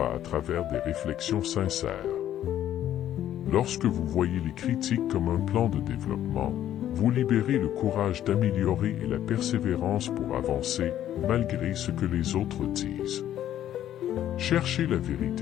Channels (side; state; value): right; quieter; 11.6 dB